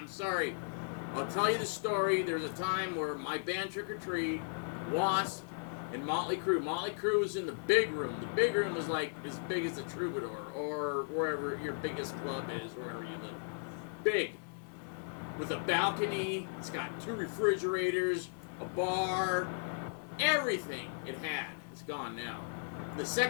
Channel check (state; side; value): silent; right; digital silence